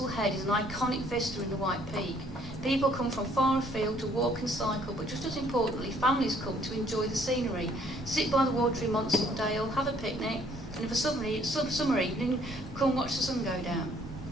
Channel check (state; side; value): noise; right; rumble, 14 dB below the sound